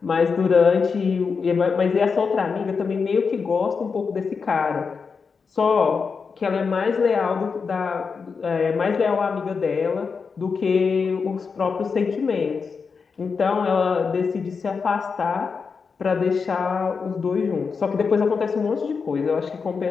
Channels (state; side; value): quieter; right; 5.3 dB